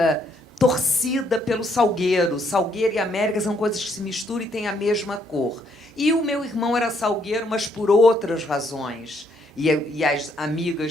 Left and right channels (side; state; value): both; normal; correlation 0.71